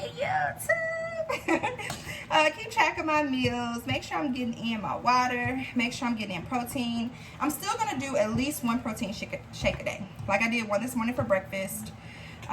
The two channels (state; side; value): identical; both; correlation 1.00